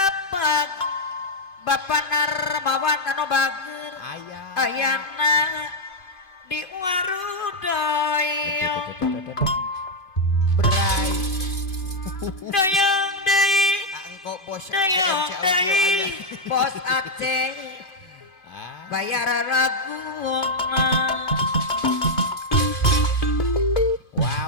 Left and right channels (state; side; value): late; right; 2.6 ms